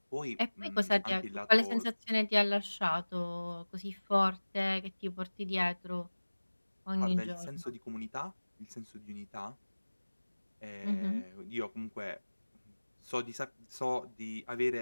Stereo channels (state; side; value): inverted; both; correlation -1.00